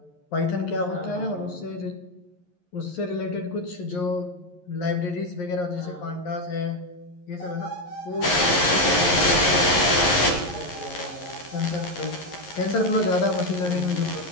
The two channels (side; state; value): right; late; 11 ms